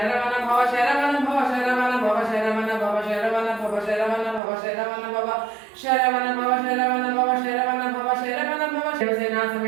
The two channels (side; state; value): left; drops out; at 4.4 s